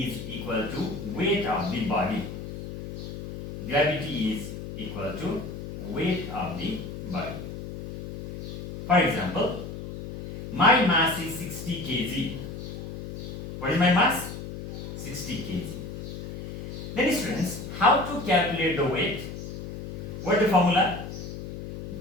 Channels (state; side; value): noise; left; hum, 9 dB below the sound